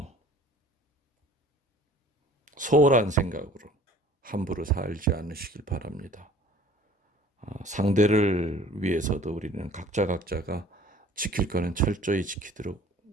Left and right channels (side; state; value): both; normal; correlation 0.51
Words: 소홀한 생각으로 함부로 살지 않으시길 바랍니다. 상대를 위해서도 우리는 각자가 지킬 거는 철저히 지키도록